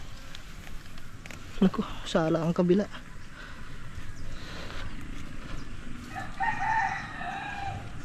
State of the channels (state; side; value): identical; both; correlation 1.00